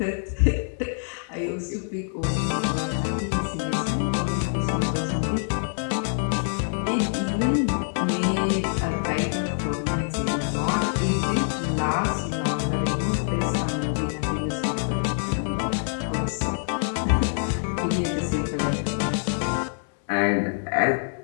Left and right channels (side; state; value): right; silent; 61 dB below the other